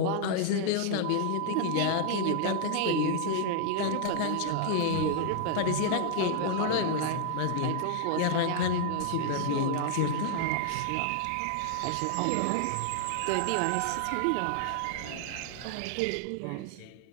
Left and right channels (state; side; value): different; both; correlation 0.00